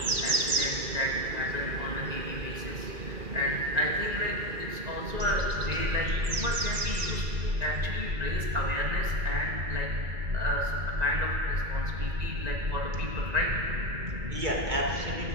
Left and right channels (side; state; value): left; late; 1.9 ms